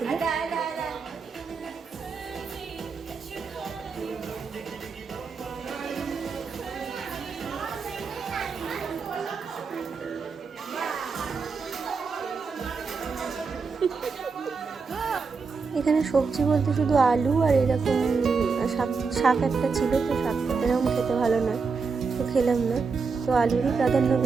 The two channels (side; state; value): left; quieter; 4.9 dB